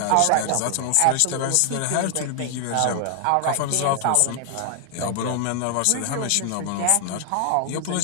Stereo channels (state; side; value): different; both; correlation 0.00